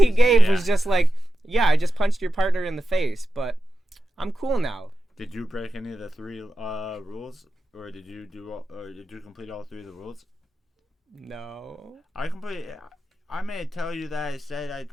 gave was just yeah, I just punched your partner in the face, but I'm cool now. Did you break any of the 3 rules, or did you complete all 3 of the rules? No. I may tell you that I said I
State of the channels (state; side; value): normal; both; correlation 0.91